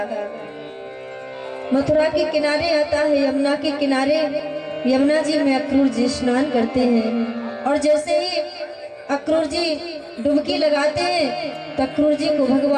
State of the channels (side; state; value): both; identical; correlation 1.00